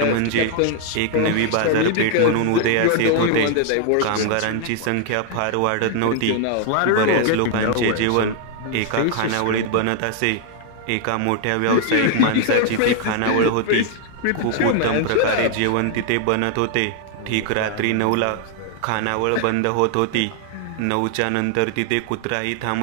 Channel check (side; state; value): both; different; correlation 0.00